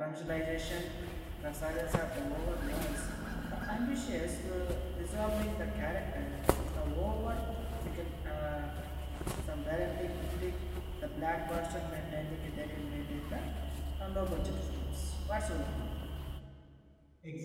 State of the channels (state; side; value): identical; both; correlation 1.00